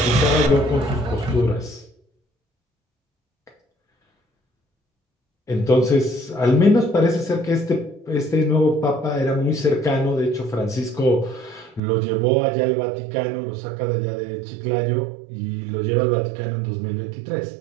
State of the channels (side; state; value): left; drops out; at 11.8 s